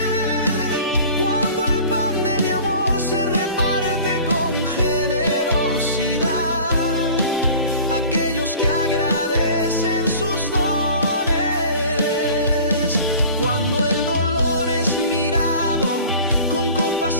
cuando el pan de mi amor se reparte con generosidad. Aquellos que agradecen sus dones, cuando el dolor es mirado con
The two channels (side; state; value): both; inverted; correlation -0.43